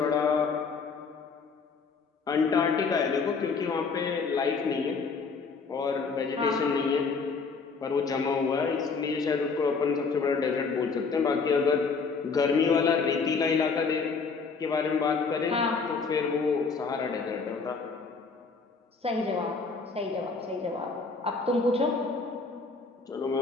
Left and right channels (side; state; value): right; quieter; 4.8 dB